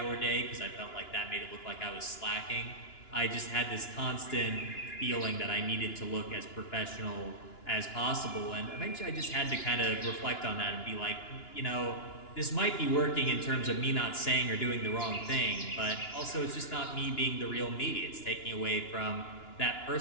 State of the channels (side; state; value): right; late; 2.9 ms